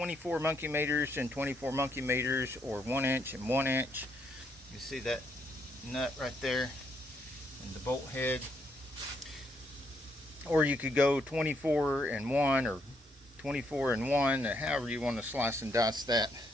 monkey meters and 24 monkey meters, or 1 inch and 1 inch. You see that nut right there and the bolt head. Or you could go 24 and 1 or 24 and 1, however you want to slice and dice that.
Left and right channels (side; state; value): both; normal; correlation 0.75